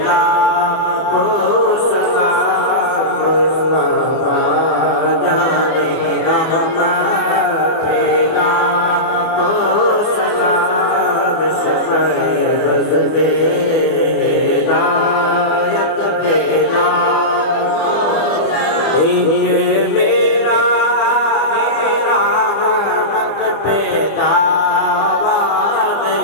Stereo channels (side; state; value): right; late; 24 ms